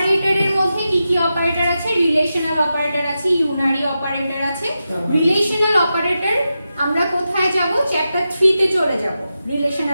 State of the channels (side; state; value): both; inverted; correlation -0.90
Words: মধ্যে কি কি অপারেটর আছে? রিলেশনাল অপারেটর আছে, ইউনারি অপারেটর আছে। রিলেশনাল অপারেটর আমরা কোথায় যাব? চ্যাপ্টার 3 তে চলে যাব